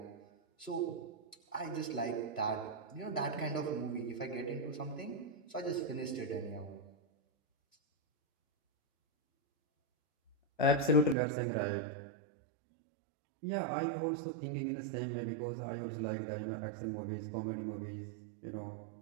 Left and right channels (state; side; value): drops out; left; at 11.2 s